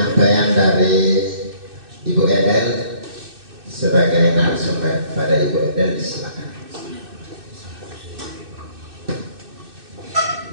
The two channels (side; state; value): left; late; 2.6 ms